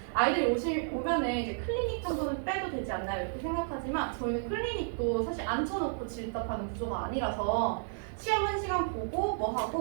아이들이 오면은 이제 클리닉 정도는 빼도 되지 않나요? 이렇게 생각하지만 저희는 클리닉도 사실 앉혀놓고 질답하는 구조가 아니라서 시험 1시간 보고 뭐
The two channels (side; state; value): left; silent; digital silence